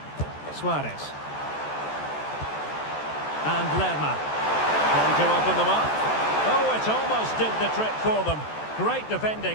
Suarez. And Lerma. Going to open them up. Oh, it almost did the trick for them. Great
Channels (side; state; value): right; late; 14 ms